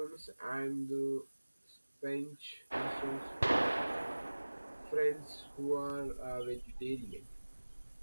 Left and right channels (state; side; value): inverted; both; correlation -1.00